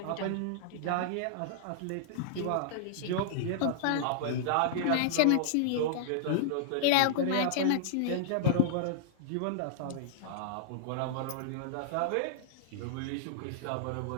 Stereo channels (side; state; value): both; different; correlation -0.01